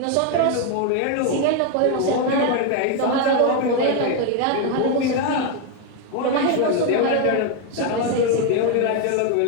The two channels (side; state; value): both; different; correlation 0.01